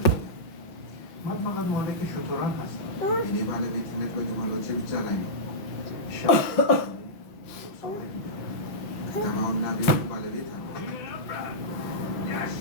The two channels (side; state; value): right; late; 5.6 ms